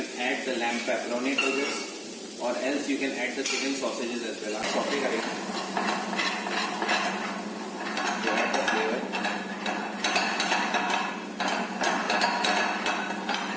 add the lamb pepperoni to this, और else you can add the chicken sausages as well. आप सॉटे करेंगे to add the flavor.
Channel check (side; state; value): both; identical; correlation 1.00